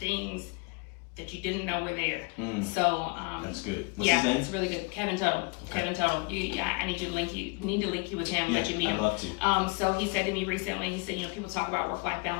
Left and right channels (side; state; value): right; quieter; 30.4 dB